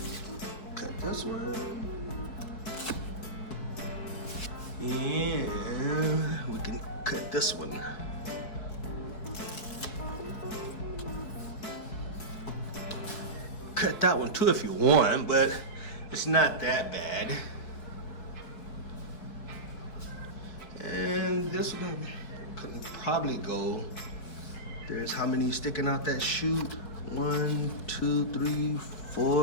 Cut this one. And we can cut this one. Cut that one too if you want, but it's not that bad. And this one couldn't probably go. There's how many sticking out that chute? 1, 2, 3,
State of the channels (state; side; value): late; right; 4.6 ms